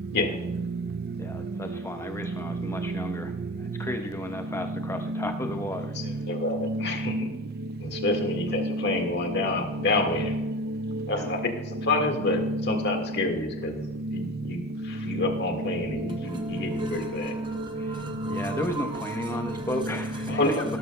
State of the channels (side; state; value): both; normal; correlation 0.34